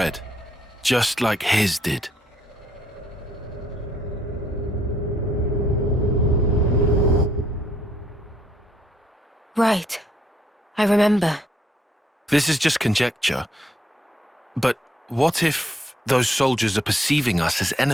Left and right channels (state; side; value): normal; both; correlation 0.70